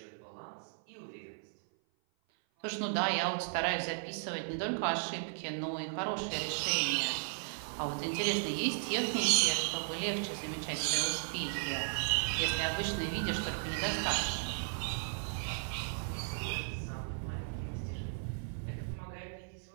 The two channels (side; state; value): left; silent; 54 dB below the other